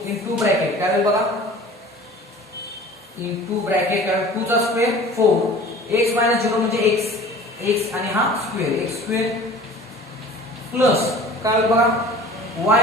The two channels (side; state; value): both; normal; correlation 0.44